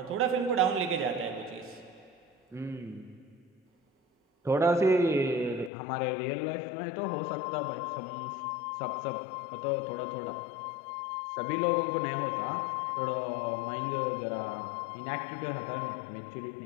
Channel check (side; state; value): right; drops out; at 5.7 s